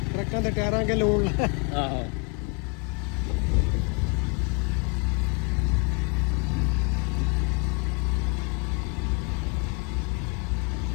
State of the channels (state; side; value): quieter; right; 32.4 dB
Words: ਟਰੱਕਾਂ ਦੇ ਟਾਇਰਾਂ ਕੇ ਲੂਣ ਆਹੋ